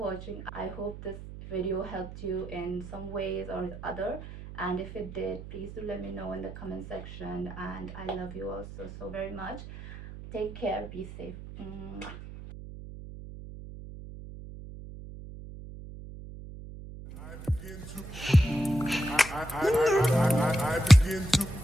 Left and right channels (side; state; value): right; noise; hum, 12 dB below the sound